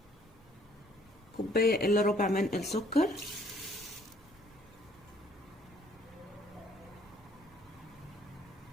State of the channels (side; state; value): both; normal; correlation 0.60